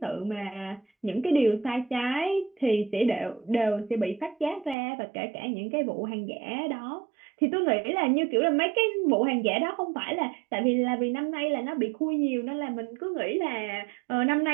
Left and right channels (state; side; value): drops out; left; at 4.8 s